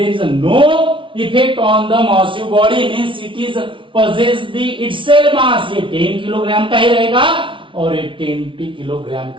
is no effect on the massive body, means it is possess the itself mass। ये 10 किलोग्राम का ही रहेगा और ये 20 किलोग्राम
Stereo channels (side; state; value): left; late; 0.25 ms